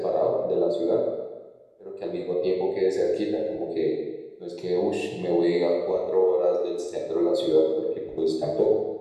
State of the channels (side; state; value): both; identical; correlation 1.00